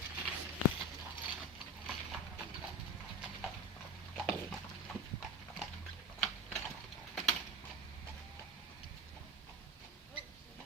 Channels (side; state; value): both; normal; correlation 0.25